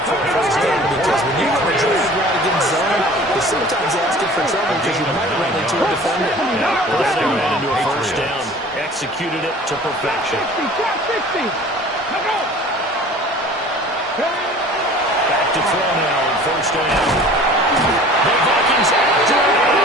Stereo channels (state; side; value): normal; both; correlation 0.45